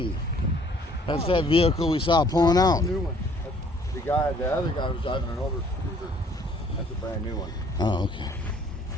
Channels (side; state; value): both; normal; correlation 0.59